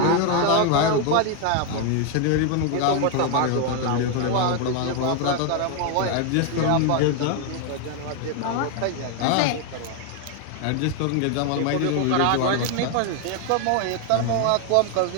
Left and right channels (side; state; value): both; different; correlation 0.00